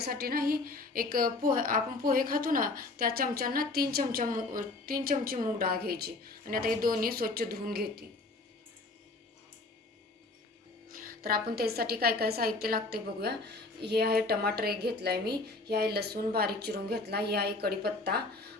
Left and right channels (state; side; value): quieter; right; 3.2 dB